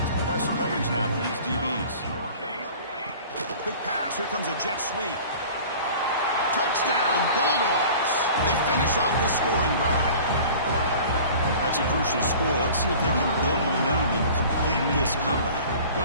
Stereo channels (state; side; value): inverted; both; correlation -0.43